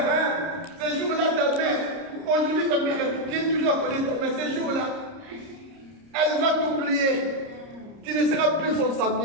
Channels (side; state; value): left; late; 30 ms